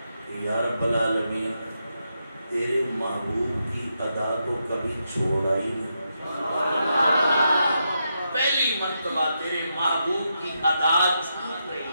کہ یا رب العالمین تیرے محبوب کی ادا تو کبھی چھوڑا ہی نہیں. پہلی مرتبہ تیرے محبوب کی ادا چھوٹ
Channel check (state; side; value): inverted; both; correlation -0.83